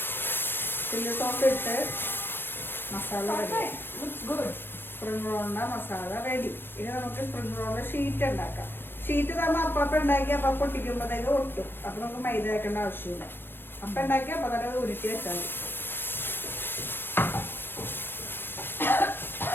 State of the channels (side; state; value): right; late; 0.098 ms